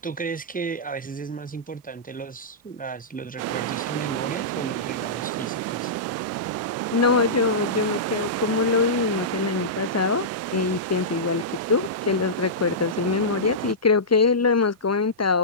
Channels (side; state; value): both; normal; correlation -0.16